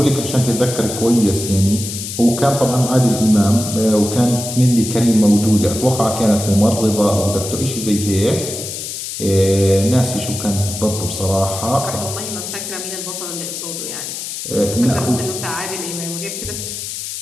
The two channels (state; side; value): noise; left; hiss, 7 dB below the sound